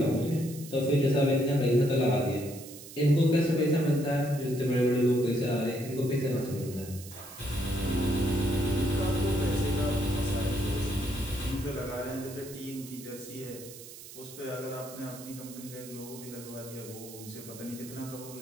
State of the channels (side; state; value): right; noise; hiss, 15 dB below the sound